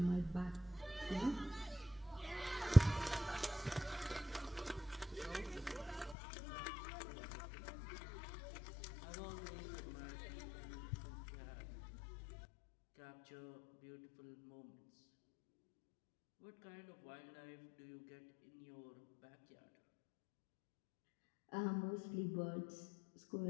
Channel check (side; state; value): right; drops out; at 6.2 s